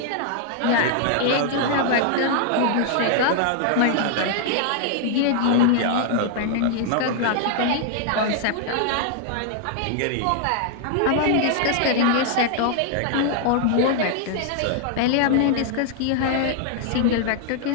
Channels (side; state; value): both; different; correlation 0.00